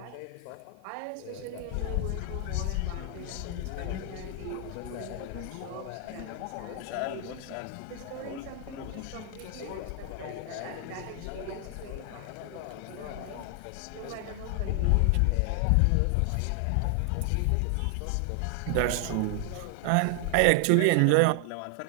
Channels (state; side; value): different; both; correlation 0.00